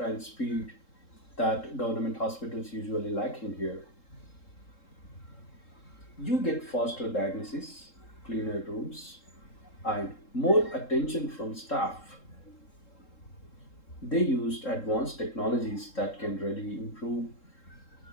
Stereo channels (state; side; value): late; right; 3.7 ms